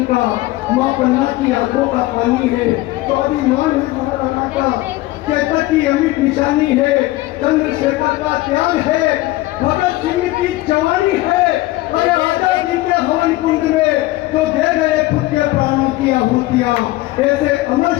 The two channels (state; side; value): quieter; right; 18.1 dB